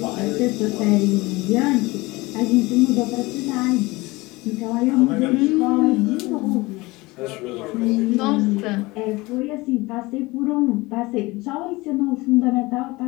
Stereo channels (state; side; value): quieter; right; 22.1 dB